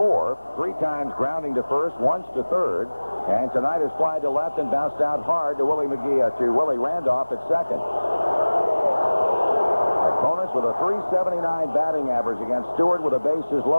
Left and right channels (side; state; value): both; inverted; correlation -1.00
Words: 3 times grounding to first, once to third. And tonight is fly to left and bounced out hard to Willie Randolph at second. Opponents with a .379 batting average against Stewart with the bases